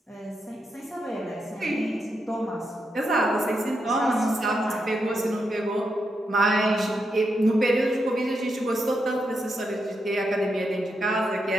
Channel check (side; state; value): both; normal; correlation 0.83